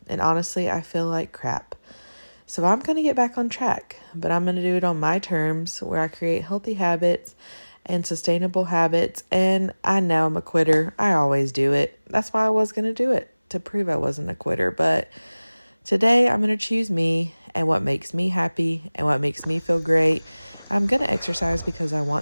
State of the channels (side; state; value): both; inverted; correlation -1.00